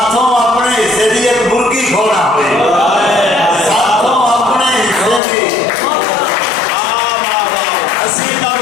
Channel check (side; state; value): right; drops out; at 5.2 s